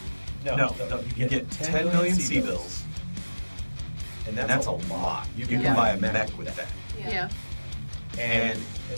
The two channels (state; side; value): inverted; both; correlation -1.00